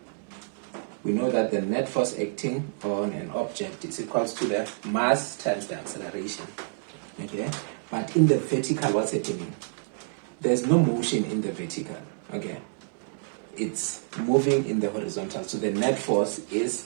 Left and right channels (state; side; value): silent; left; digital silence